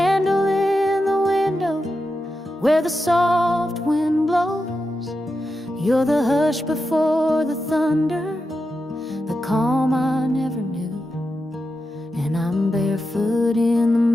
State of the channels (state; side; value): normal; both; correlation 0.89